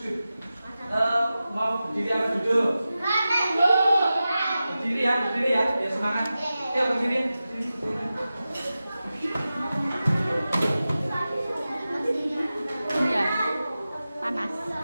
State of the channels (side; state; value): both; inverted; correlation -0.94